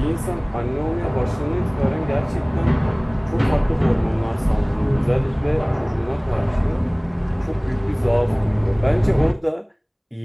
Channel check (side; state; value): both; identical; correlation 1.00